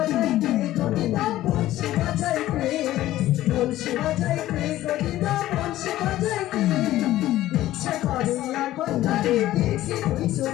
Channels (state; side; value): quieter; right; 14.7 dB